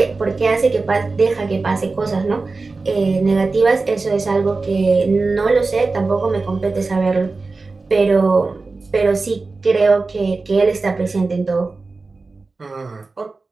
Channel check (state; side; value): quieter; left; 3.8 dB